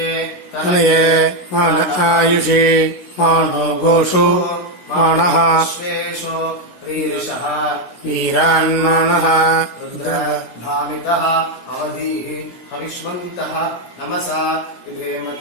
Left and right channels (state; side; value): late; right; 16 ms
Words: தனையே மான ஆயுஷி மானோ கோஷு மானஹ வீரான்மானஹ भामितः अवधीः हविष्मन्तः नमसा